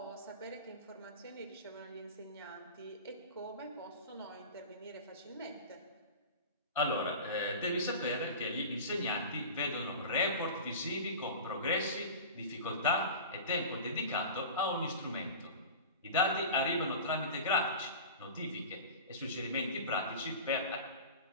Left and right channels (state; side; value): inverted; both; correlation -0.33